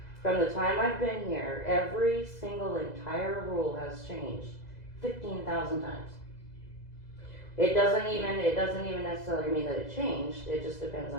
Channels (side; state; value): right; late; 2.0 ms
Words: From the time I've been here, every single entire rule has changed 15,000 times. It doesn't even necessarily mean that it changed. It just depends